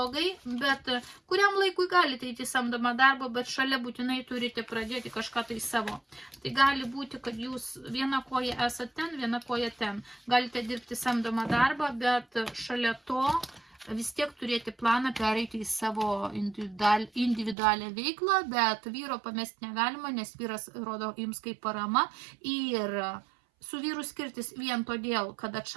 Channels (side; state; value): left; drops out; at 17.6 s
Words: bet kuriam laikui galite eiti samdomą darbą, bet šalia būtinai turite pradėti kažką tai savo. Tai gali būti, kad jūs viena koja esate ten, viena koja ten. Galite dirbti samdomą darbą, bet šalia to vis tiek turėti planą pereiti į savo individualią veiklą, bet vyro pamesti negalima, nes vyras rodo jums kaip parama ir su vyru skirtis vien todėl, kad